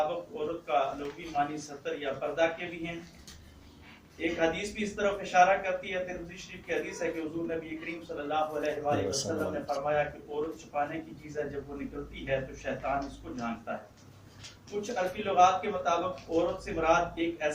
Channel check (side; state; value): both; identical; correlation 1.00